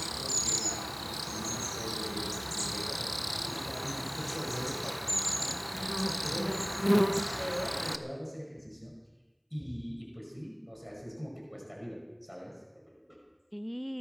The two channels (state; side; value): identical; both; correlation 1.00